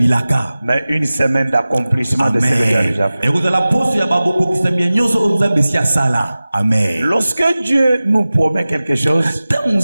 mais une semaine d'accomplissement de ce que Dieu a déjà fait. ekozala poso ya babokokisami ya nyonso oyo Nzambe esi asala. Amen. Lorsque Dieu nous promet quelque chose, ntango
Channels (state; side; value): inverted; both; correlation -0.97